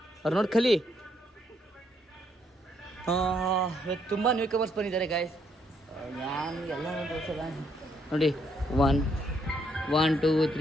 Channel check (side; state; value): both; normal; correlation 0.73